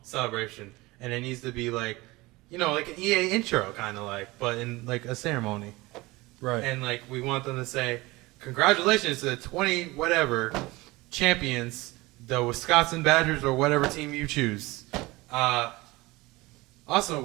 celebration, and it needs to be like, like an EA intro kind of like, but in like a ceremony. Right. And like we want them to say, congratulations to the 20 whatever champions, the Wisconsin Badgers or whatever team you choose. Also,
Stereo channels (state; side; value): quieter; left; 21.4 dB